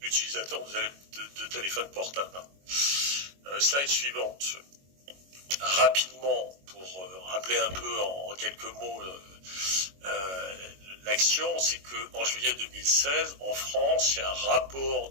utilisateurs de téléphones portables. Slide suivante. Rapidement, pour rappeler un peu en quelques mots l'action, c'est qu'en juillet 2016, en France, il y a un rapport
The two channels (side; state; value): left; late; 22 ms